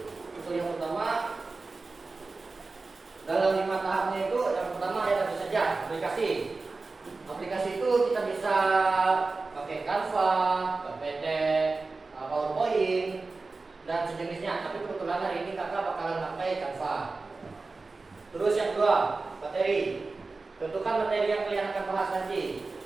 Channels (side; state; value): left; quieter; 3.8 dB